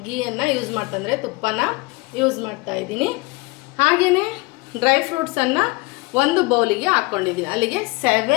ಗೀಯನ್ನು ಯೂಸ್ ಮಾಡ್ತಂದರೆ ತುಪ್ಪನ ಯೂಸ್ ಮಾಡ್ತಾಯಿದ್ದೀನಿ. ಹಾಗೆಯೇ ಡ್ರೈ ಫ್ರೂಟ್ಸನ್ನು 1 ಬೌಲಿಗೆ ಹಾಕ್ಕೊಂಡಿದ್ದೀನಿ. ಅಲ್ಲಿಗೆ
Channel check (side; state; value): right; quieter; 24.7 dB